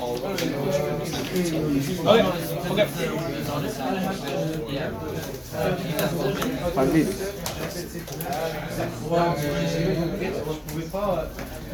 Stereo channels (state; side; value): identical; both; correlation 1.00